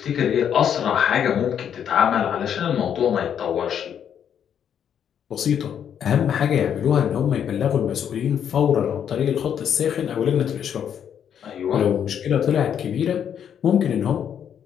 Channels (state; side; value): quieter; right; 8.7 dB